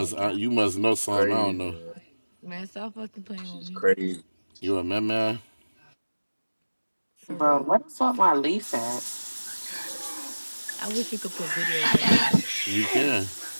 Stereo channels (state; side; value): inverted; both; correlation -1.00